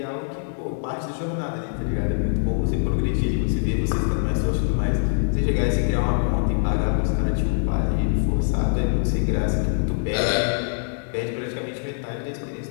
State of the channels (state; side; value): silent; right; 63 dB below the other